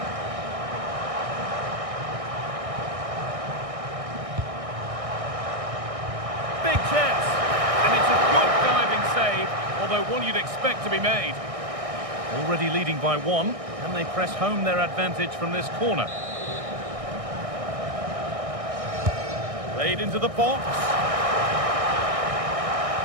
Big chance. And it's a good diving save, although one you'd expect to be made. Already leading by one. Can they press home their advantage from this corner? Played into the box.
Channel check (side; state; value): left; late; 1.6 ms